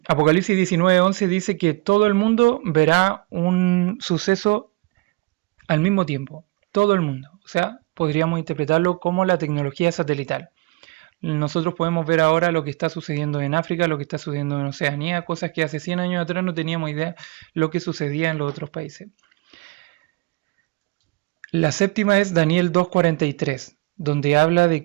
Apocalipsis 19:11 dice que todo el mundo verá un suceso al mismo tiempo. Todo el mundo. O sea, podríamos interpretarlo como la tecnología satelital. Nosotros podemos ver ahora lo que está sucediendo en África, lo que está sucediendo en Oceanía, cosas que hace 100 años atrás no teníamos idea lo que sucedía en los otros países. La séptima es Daniel 2:43, donde habla de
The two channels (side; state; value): left; quieter; 23.4 dB